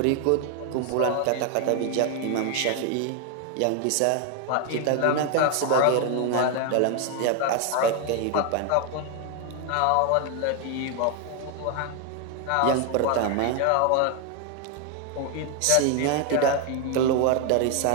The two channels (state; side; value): different; both; correlation 0.01